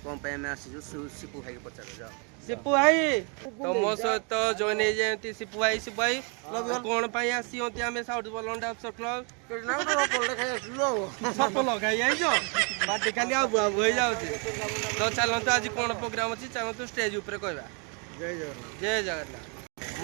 कौन पे मैं आसी जो सिपू भाई को पचार जाओ। सिपू भाई तो मो सहित जॉइन हो जाती सिपू भाई कौन पे आसी आम साउथ बलंटा अफसर क्लब सफल खाई पार्टी खाली आबू आबू हो जाऊँगी। तो चलतु आज कौन प्रोग्राम अच्छी चलतु स्टेज उपर कहवा जय जगन्नाथ।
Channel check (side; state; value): left; quieter; 36.0 dB